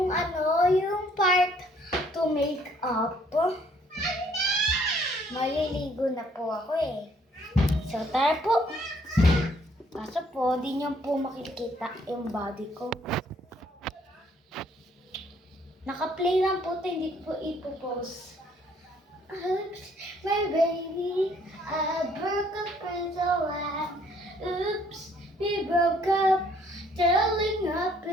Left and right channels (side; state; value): both; normal; correlation 0.64